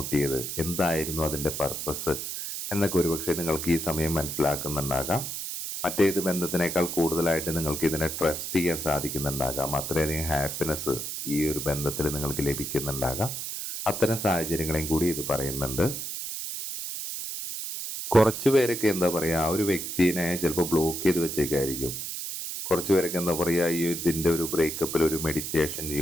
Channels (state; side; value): noise; right; hiss, 5 dB below the sound